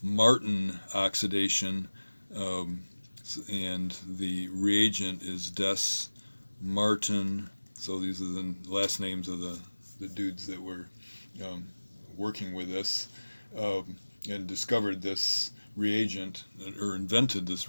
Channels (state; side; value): inverted; both; correlation -1.00